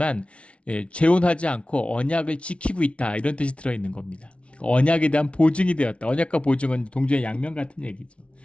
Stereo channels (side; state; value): right; late; 0.061 ms